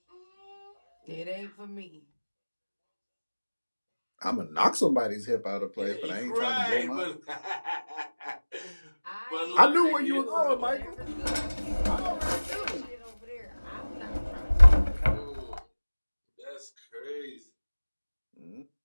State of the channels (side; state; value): both; inverted; correlation -1.00